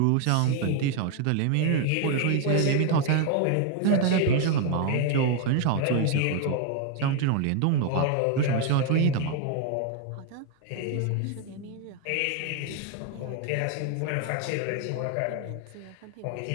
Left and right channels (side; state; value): both; different; correlation 0.01